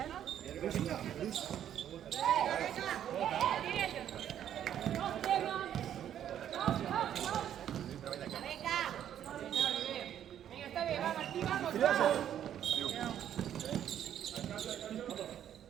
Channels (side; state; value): left; quieter; 10.3 dB